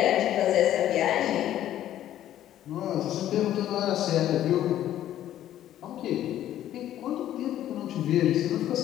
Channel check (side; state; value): right; quieter; 12.2 dB